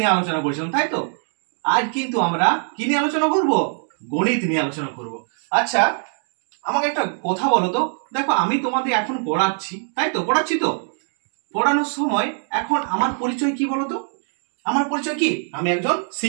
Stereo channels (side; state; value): left; silent; 56 dB below the other